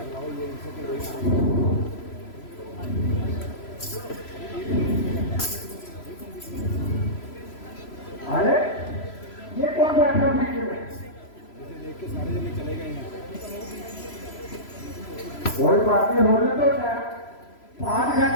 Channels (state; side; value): late; right; 3.0 ms